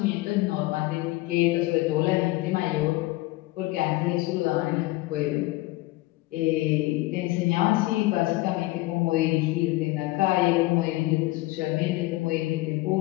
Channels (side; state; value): right; quieter; 19.4 dB